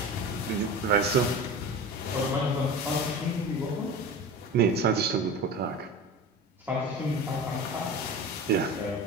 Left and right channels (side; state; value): both; normal; correlation 0.32